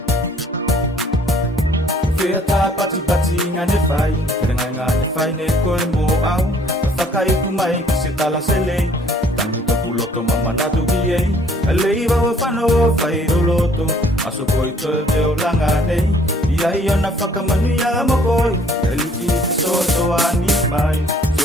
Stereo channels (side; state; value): both; normal; correlation 0.59